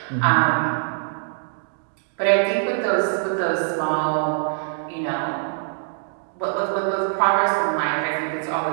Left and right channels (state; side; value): silent; left; digital silence